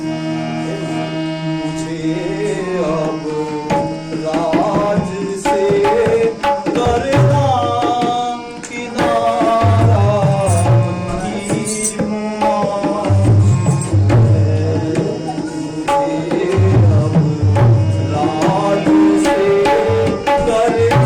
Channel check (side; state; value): both; identical; correlation 1.00